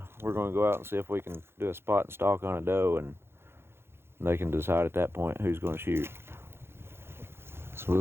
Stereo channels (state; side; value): late; left; 0.12 ms